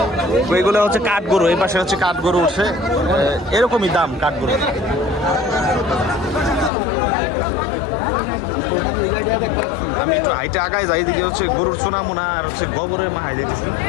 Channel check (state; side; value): drops out; right; at 6.7 s